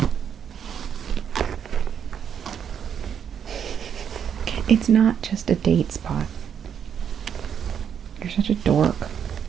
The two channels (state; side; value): quieter; left; 8.1 dB